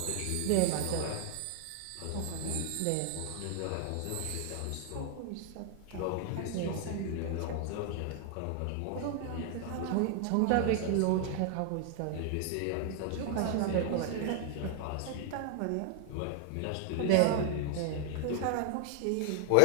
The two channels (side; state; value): both; different; correlation 0.00